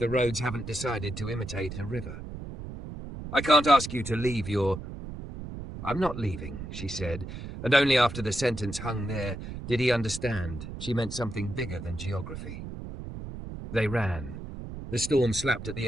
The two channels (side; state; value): right; noise; rumble, 9 dB below the sound